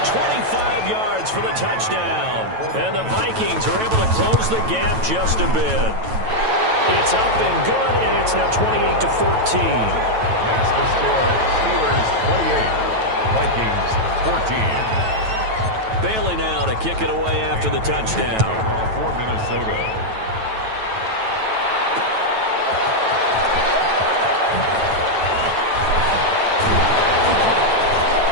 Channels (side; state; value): left; late; 9.1 ms